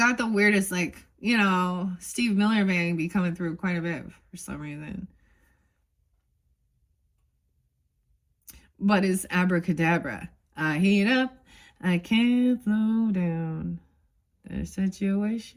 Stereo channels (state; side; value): identical; both; correlation 1.00